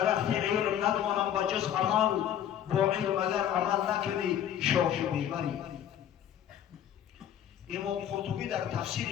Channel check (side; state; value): right; quieter; 10.2 dB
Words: علم ندانم به جز عمل با علم اگر عمل نکنی شاخ میبری امام قرطبی در